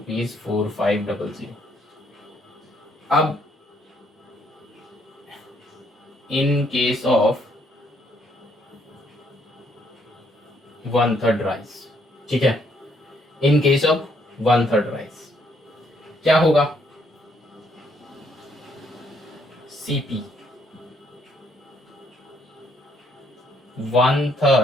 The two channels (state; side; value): normal; both; correlation 0.70